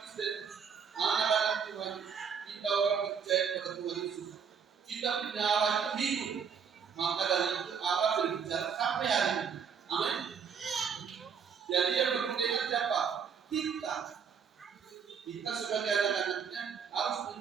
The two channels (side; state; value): left; quieter; 6.8 dB